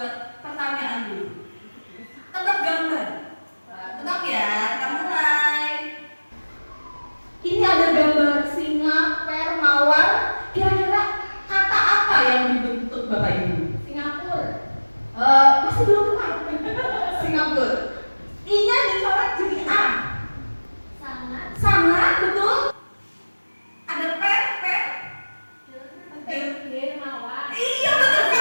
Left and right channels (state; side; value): inverted; both; correlation -1.00